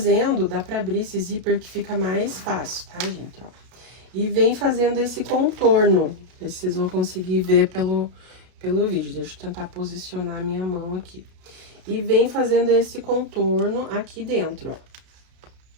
dá pra abrir esse zíper que fica mais fácil, tá, gente, ó. E vem fazendo esse contorno. Não sei se vocês vão conseguir ver pelo vídeo. Deixa eu tentar posicionar a minha mão aqui. E vem fazendo esse contorno aqui dentro, ó.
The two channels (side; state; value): left; late; 33 ms